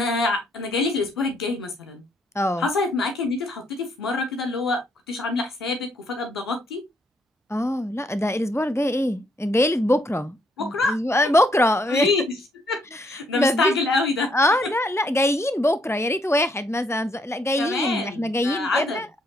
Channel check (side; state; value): both; normal; correlation 0.71